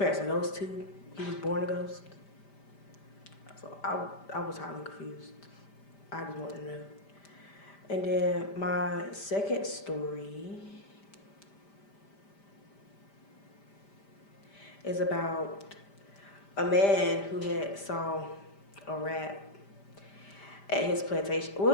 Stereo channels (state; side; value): late; right; 5.0 ms